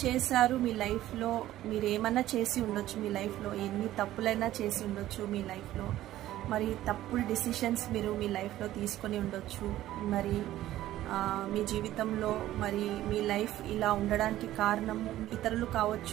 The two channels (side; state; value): left; quieter; 14.2 dB